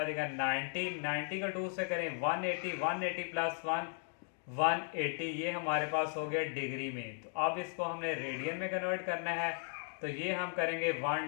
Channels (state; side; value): silent; right; 53 dB below the other